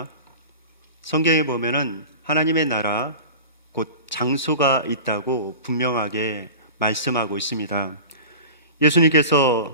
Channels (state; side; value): inverted; both; correlation -0.34